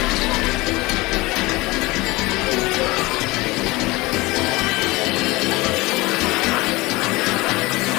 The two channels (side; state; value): right; quieter; 22.0 dB